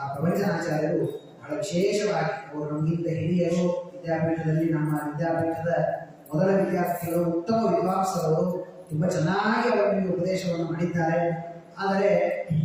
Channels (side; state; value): both; identical; correlation 1.00